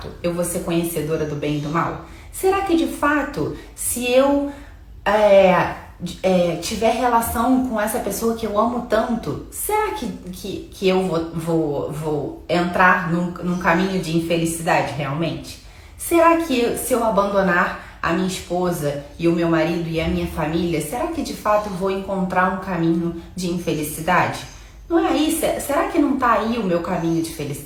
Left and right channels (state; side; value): identical; both; correlation 1.00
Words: eu vou ser conhecedora do bem e do mal? Será que de fato, se eu tiver relação com essa pessoa que eu amo tanto, será que eu vou entrar num caminho de infelicidade realmente? Será que se eu abandonar a minha esposa e o meu marido e a minha família, será que de fato eu vou encontrar um caminho de infelicidade? Não é aí? Será que não está aí o meu caminho de